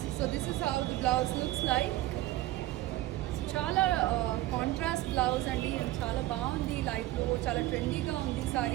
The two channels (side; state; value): left; quieter; 16.4 dB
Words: So this is how the blouse looks like. చాలా contrast blouse అండి, చాలా బాగుంది, లైఫ్లో చాలా ట్రెండీగా ఉంది